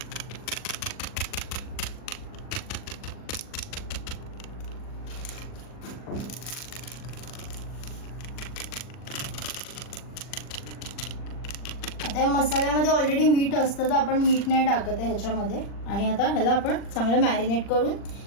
आता या मसाल्यामध्ये ऑलरेडी मीठ असतं तर आपण मीठ नाही टाकत आहे ह्याच्यामध्ये। आणि आता ह्याला आपण चांगलं मॅरिनेट करून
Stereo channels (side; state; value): right; late; 40 ms